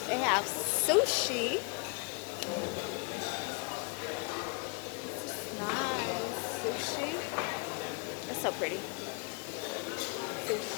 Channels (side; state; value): right; quieter; 33.7 dB